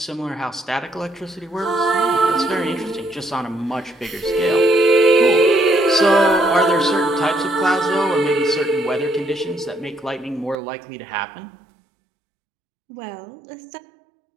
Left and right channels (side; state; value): left; drops out; at 10.6 s